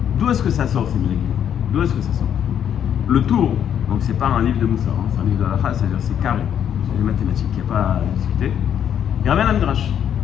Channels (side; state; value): right; quieter; 9.2 dB